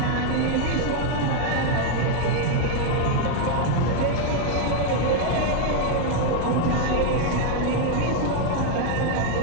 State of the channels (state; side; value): different; both; correlation 0.00